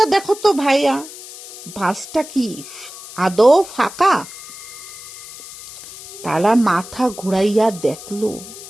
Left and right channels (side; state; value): left; noise; hiss, 15 dB below the sound